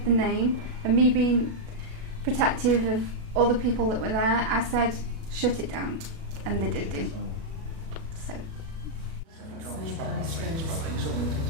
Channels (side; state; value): left; late; 37 ms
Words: the name and me being protective of all the people that were there, I said, shut it down, and they did do. So.